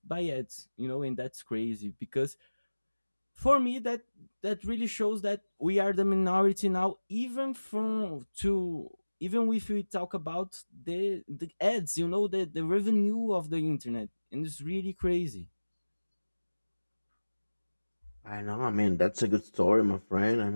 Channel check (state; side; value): inverted; both; correlation -1.00